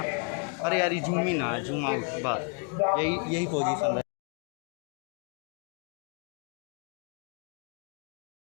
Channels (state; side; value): quieter; right; 35.9 dB